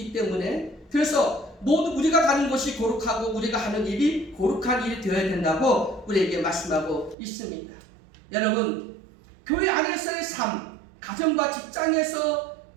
때문에, 그래서 모두 우리가 가는 곳이 거룩하고 우리가 하는 일이 거룩한 일이 되어야 된다고 우리에게 말씀하고 있습니다. 여러분, 교회 안에서의 삶, 가정과 직장에서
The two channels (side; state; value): left; drops out; at 7.2 s